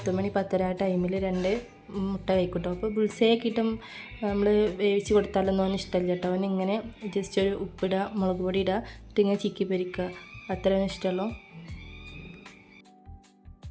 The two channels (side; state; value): both; identical; correlation 1.00